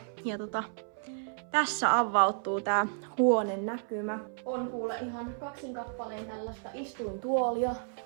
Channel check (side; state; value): left; silent; 56 dB below the other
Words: Ja tässä avautuu tää huoneen näkymä. On kuule ihan kaksin kappaleen tällaista istuintuolia.